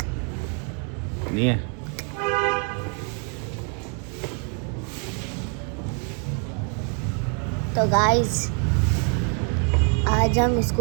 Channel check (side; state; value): left; quieter; 40.0 dB